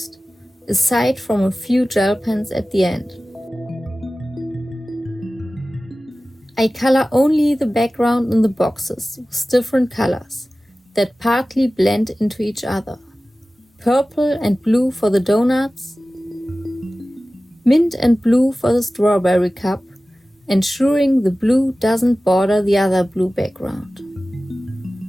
aside from a few gel pens at the end. I color only the background in the boxes with different colors that partly blend into each other. Purple and blue for the donuts, mint and blue for the strawberry cup, ensuring the blue doesn't border the other blue background.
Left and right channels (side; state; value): both; normal; correlation 0.96